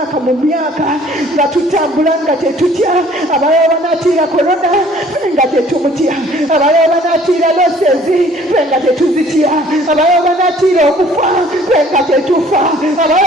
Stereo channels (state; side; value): normal; both; correlation 0.55